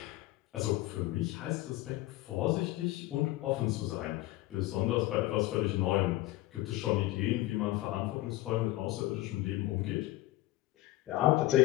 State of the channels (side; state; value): right; quieter; 17.4 dB